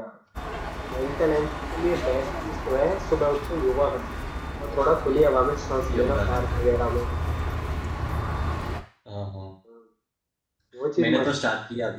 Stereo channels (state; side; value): identical; both; correlation 1.00